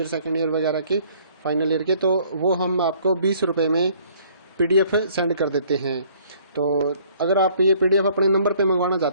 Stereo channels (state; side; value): inverted; both; correlation -0.59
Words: second year वगैरह के, फाइनल ईयर के, तो वो हम आपको 20 रुपये में PDF सेंड कर देते हैं। तो अगर आप ये PDF अपने नंबर पे मंगवाना